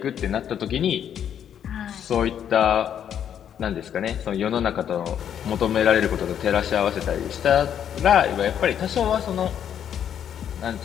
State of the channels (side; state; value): right; quieter; 9.2 dB